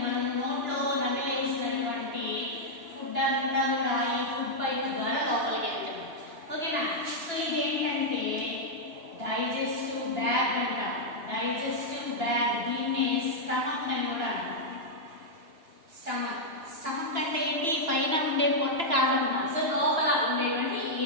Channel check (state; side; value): late; left; 2.9 ms